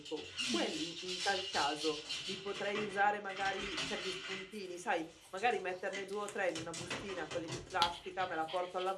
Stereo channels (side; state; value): both; identical; correlation 1.00